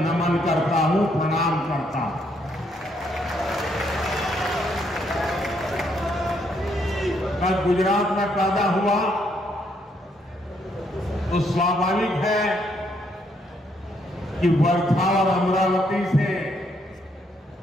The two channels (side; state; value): both; normal; correlation 0.72